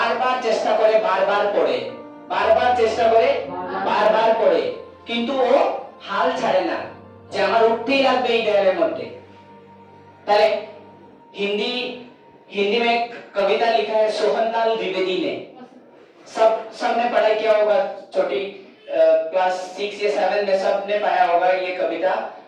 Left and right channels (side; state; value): both; identical; correlation 1.00